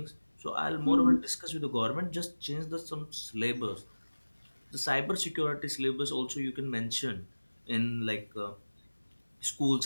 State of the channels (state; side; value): inverted; both; correlation -1.00